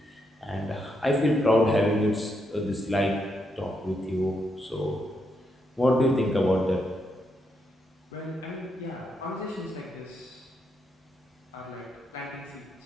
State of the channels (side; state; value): both; normal; correlation 0.80